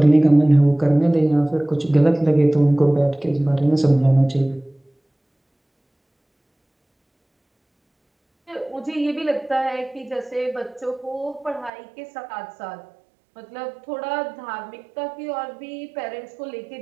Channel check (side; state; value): left; drops out; at 11.7 s